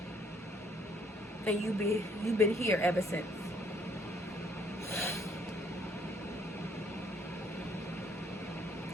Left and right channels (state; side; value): normal; both; correlation 0.65